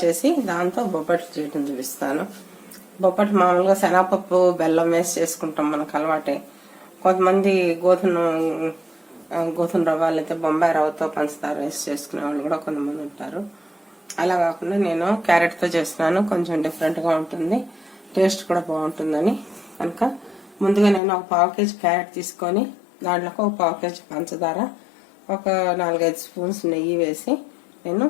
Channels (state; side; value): drops out; right; at 21.0 s